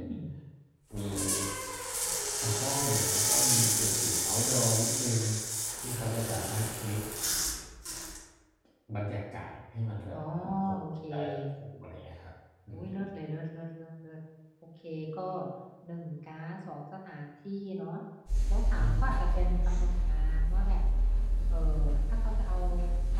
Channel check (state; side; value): identical; both; correlation 1.00